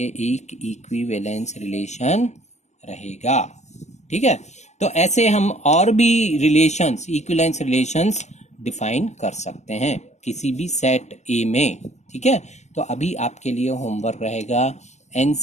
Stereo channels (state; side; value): late; right; 0.33 ms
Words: एक इक्विवेलेंस रिलेशन रहेगा. ठीक है, तो ऐसे हम और भी रिलेशंस, इक्विवेलेंस रिलेशंस डिफाइन कर सकते हैं किसी भी सेट A में. ठीक है, तो अभी आपके लिए होमवर्क रहेगा